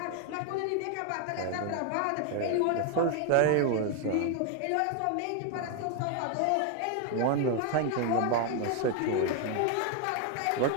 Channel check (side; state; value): both; different; correlation 0.01